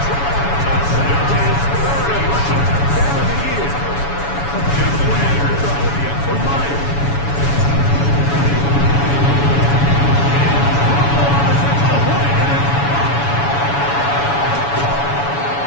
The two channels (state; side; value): late; right; 7.1 ms